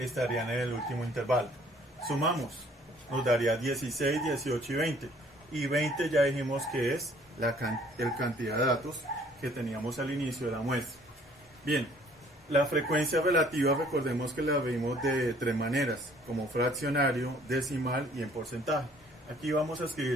en el último intervalo. Sumamos. Nos daría 16, 18 y 20. Y 20 ya dijimos que es el cantidad de datos que teníamos al inicio de la muestra. Bien, La frecuencia relativa, recordemos que la vimos de tres maneras, como fraccionario, decimal y en porcentaje. Aquí vamos a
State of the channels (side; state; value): both; normal; correlation 0.58